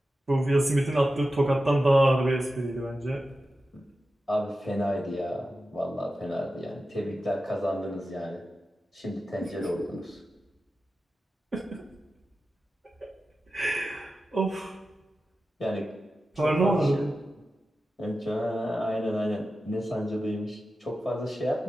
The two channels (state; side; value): normal; both; correlation 0.93